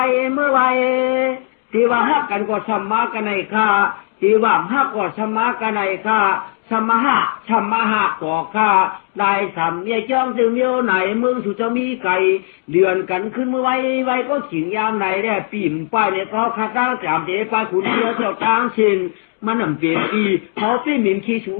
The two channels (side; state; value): right; silent; digital silence